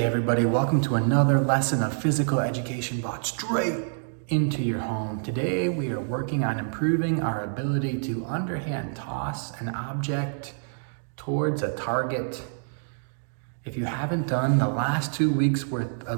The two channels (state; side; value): silent; left; digital silence